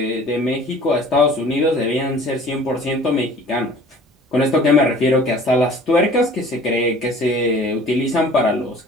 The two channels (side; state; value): both; normal; correlation 0.48